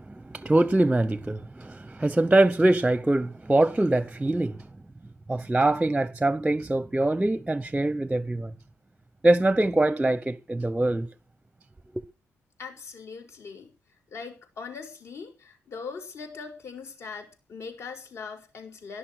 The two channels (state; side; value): normal; both; correlation 0.96